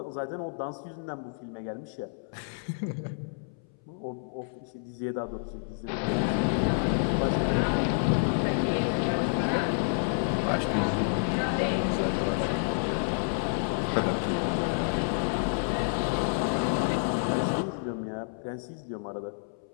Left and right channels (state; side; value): silent; right; 58 dB below the other